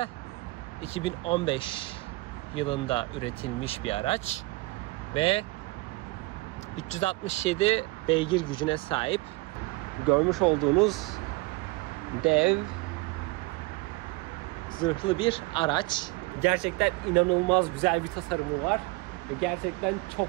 2015 yılında üretilmiş bir araç ve 367 beygir gücüne sahip. Görmüş olduğunuz dev zırhlı bir araç. Gerçekten inanılmaz güzel bir tasarımı var ve gerçekten çok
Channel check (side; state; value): left; quieter; 22.8 dB